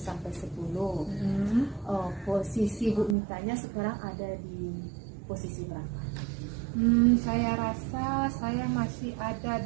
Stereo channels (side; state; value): left; drops out; at 3.2 s